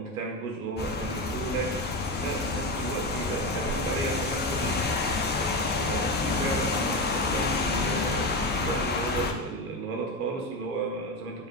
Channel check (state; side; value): normal; both; correlation 0.17